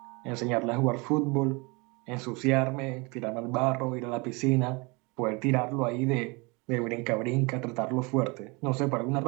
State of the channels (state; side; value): quieter; left; 27.8 dB